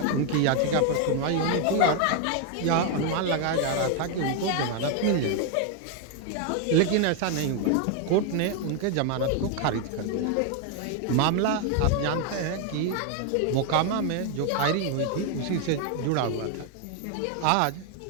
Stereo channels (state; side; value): different; both; correlation 0.01